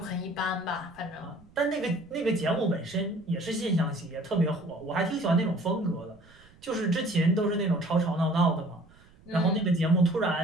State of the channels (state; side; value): noise; right; rumble, 27 dB below the sound